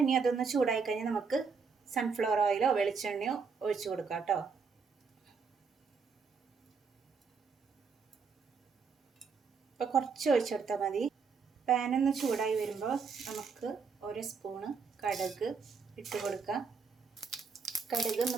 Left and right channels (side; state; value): left; quieter; 5.3 dB